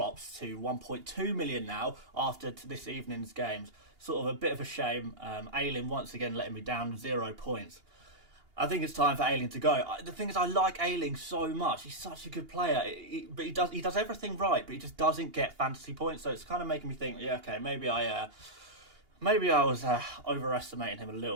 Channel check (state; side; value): late; left; 2.8 ms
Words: to 1.2 million now after this evening's games. Sort of a bit of a shame. Ayling once again letting me down, 0 points. I think it's time for Ayling to go. The thing is, I like Ayling so much. He's such a good player. But he does everything right, but he just doesn't get fantasy points. So it's kind of making me think, maybe I was overestimating him a